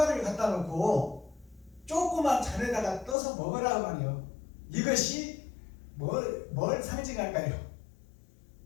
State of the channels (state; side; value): drops out; right; at 3.2 s